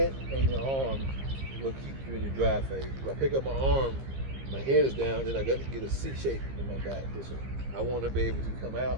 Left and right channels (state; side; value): late; left; 15 ms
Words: and your arm will keep you in your drive phase. If I pick up my arm, my head is down, then I got to get a C shape in my back. Listen, I want to be able to come out